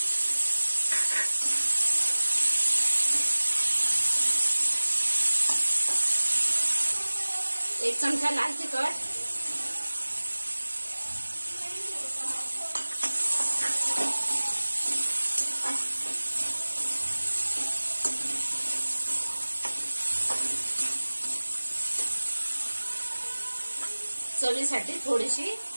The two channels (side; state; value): both; inverted; correlation -1.00